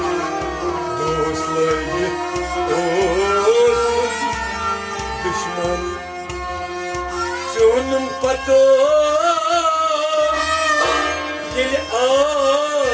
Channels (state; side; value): identical; both; correlation 1.00